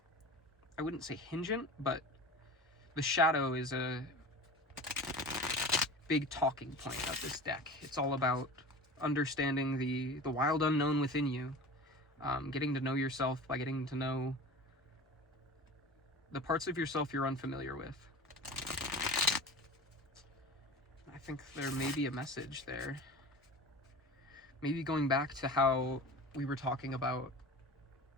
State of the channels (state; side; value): normal; both; correlation 0.35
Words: wouldn't say hingent, but the shadow is a big talking point of this deck. It's all about understanding the wild unknown within you. Getting to know yourself by getting to know the parts of yourself you're unfamiliar with. I think there may be a message there. Maybe going back to how we were talking about